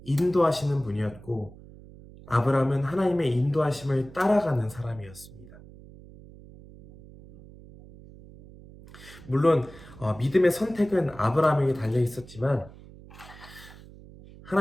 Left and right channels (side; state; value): right; noise; hum, 19 dB below the sound